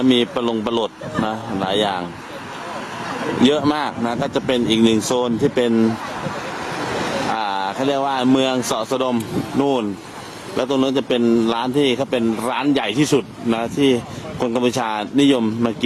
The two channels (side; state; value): both; identical; correlation 1.00